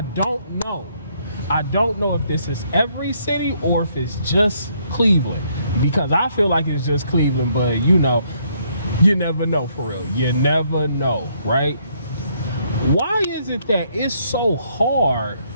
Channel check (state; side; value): inverted; both; correlation -0.70